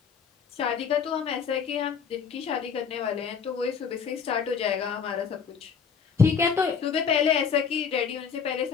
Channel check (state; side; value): quieter; right; 6.5 dB